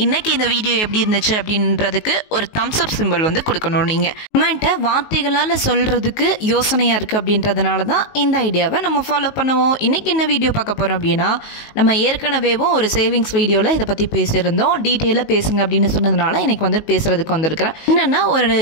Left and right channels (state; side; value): late; right; 19 ms